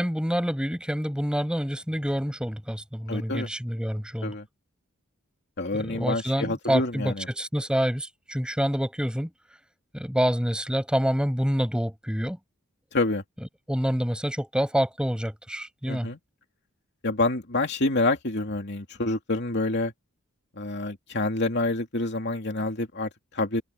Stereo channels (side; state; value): both; normal; correlation 0.61